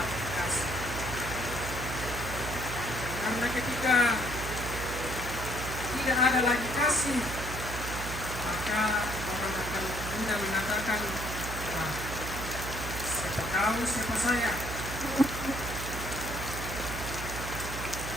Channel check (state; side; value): noise; right; hum, 7 dB below the sound